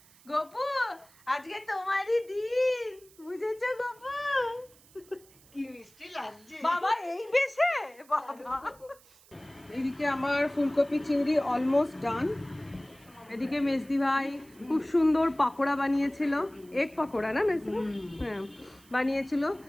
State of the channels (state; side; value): noise; right; hiss, 27 dB below the sound